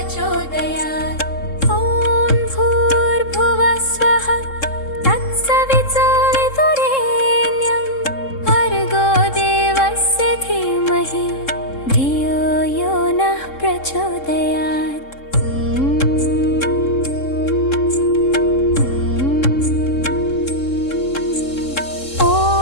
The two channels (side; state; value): right; late; 3.7 ms